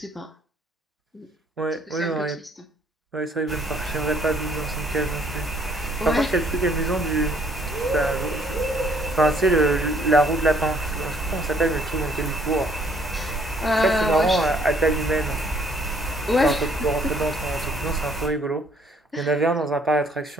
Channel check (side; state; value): both; normal; correlation 0.63